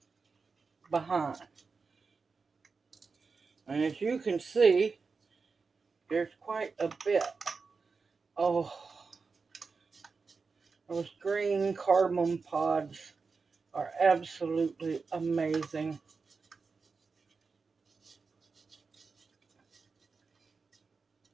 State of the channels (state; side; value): quieter; left; 4.7 dB